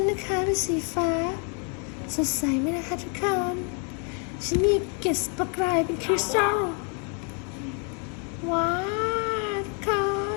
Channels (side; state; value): right; quieter; 39.0 dB